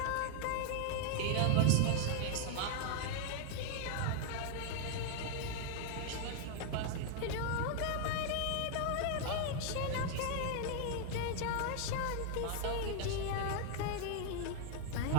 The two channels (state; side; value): different; both; correlation 0.00